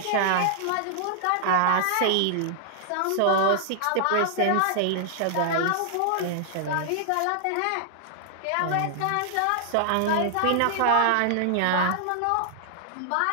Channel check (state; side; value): different; both; correlation -0.01